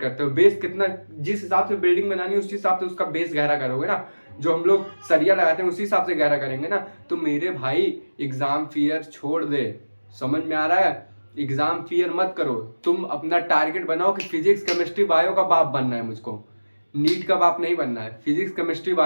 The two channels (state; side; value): inverted; both; correlation -1.00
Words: करते हो बेस कितना, जिस हिसाब से बिल्डिंग बनानी है उस हिसाब से उसका बेस गहरा करोगे ना। जो हम लोग सरिया लगाते हैं उसी हिसाब से गहरा करेंगे ना। तो मेरे भाई एग्जाम फियर छोड़ दे। समझ में आ रहा है? एग्जाम फियर मत करो। तुम अपना टारगेट बनाओ कि फिजिक्स केमिस्ट्री बायो का बाप बनना है मुझको, नीट का बाप नहीं बनना है, फिजिक्स केमिस्ट्री